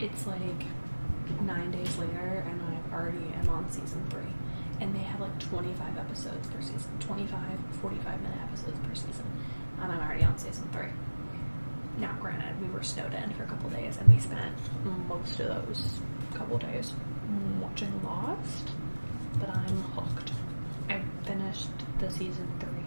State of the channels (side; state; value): both; inverted; correlation -1.00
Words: like 9 days later, and I already am on season 3. And they have like 25 episodes per season, 25 45-minute episodes per season, and I'm already on season 3. Now, granted, we were snowed in for a couple days, and we spent most of those couple days watching Lost, but I'm hooked. I finished the season 3